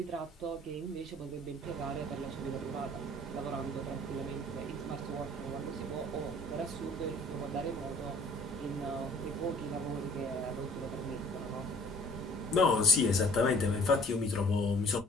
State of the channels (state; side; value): normal; both; correlation 0.55